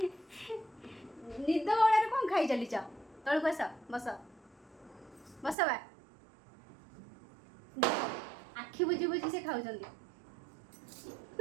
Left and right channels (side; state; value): left; drops out; at 5.6 s